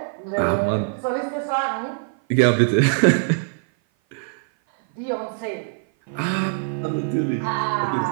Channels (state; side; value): silent; left; 56 dB below the other